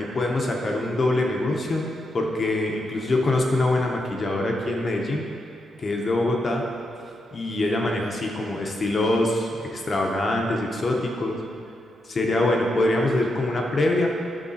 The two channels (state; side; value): normal; both; correlation 0.83